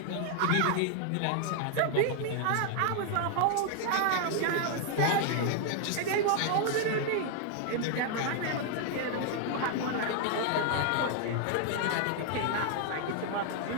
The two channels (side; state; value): both; different; correlation 0.00